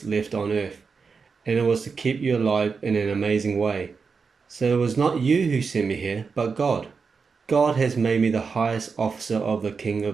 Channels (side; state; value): left; quieter; 5.2 dB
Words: left on earth, and it was to keep you alive in an amazing way. So it was not you who sent me here, but God. God has made me the highest officer of the king